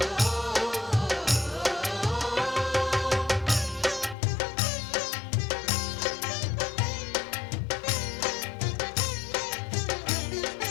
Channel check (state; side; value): drops out; right; at 4.2 s